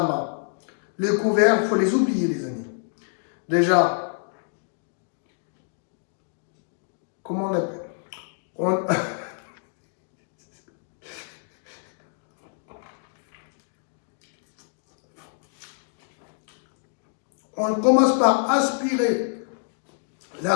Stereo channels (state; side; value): silent; right; 60 dB below the other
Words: main. Les couverts, il faut les oublier, les amis. Déjà, comment on appelle? On commence par aspirer la